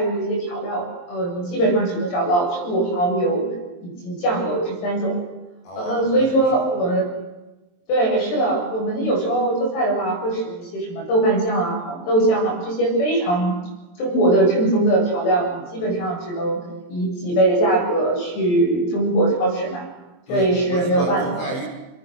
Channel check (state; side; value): late; right; 23 ms